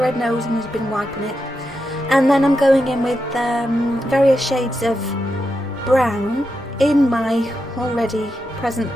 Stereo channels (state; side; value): normal; both; correlation 0.86